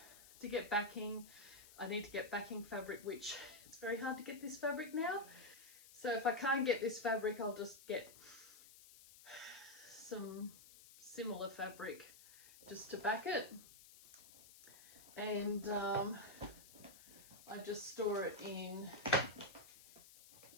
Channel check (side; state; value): left; noise; hiss, 19 dB below the sound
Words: to get backing. I need to get backing fabric, which it's very hard to get this fabric now. So if I can't get this fabric, I'll just get some similar fabric just to back it. And I just store it in